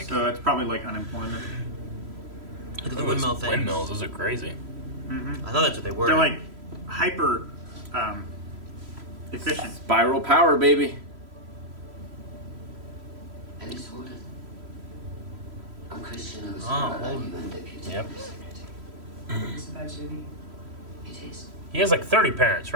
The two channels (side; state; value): left; late; 3.0 ms